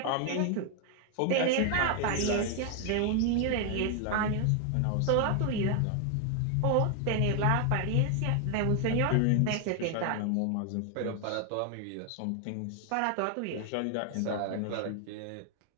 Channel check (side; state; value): both; different; correlation 0.00